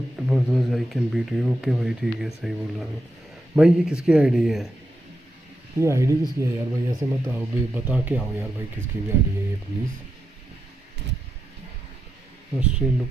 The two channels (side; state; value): both; normal; correlation 0.85